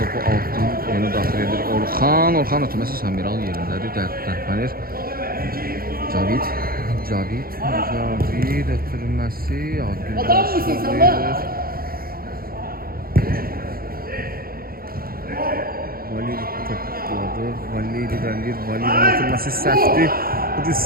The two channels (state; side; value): late; left; 0.43 ms